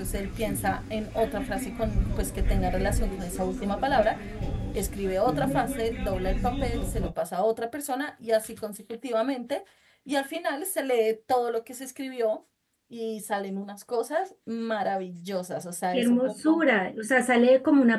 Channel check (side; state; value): both; identical; correlation 1.00